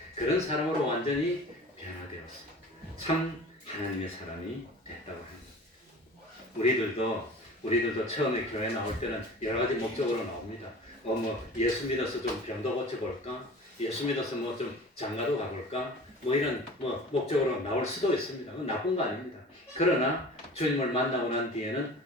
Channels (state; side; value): normal; both; correlation 0.41